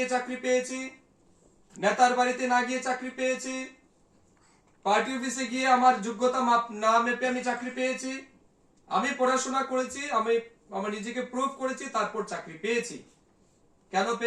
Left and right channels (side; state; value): both; identical; correlation 1.00